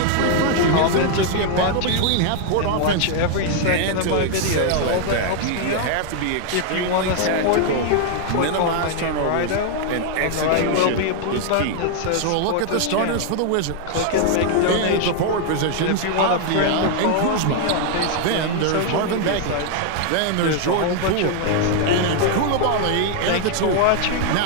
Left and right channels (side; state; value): both; different; correlation 0.00